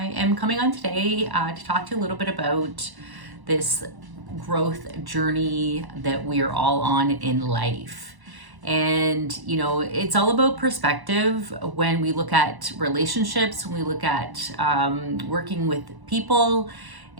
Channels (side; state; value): left; late; 1.1 ms